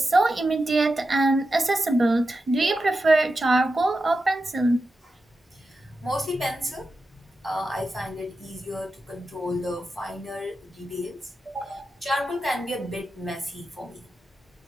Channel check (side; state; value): both; normal; correlation 0.90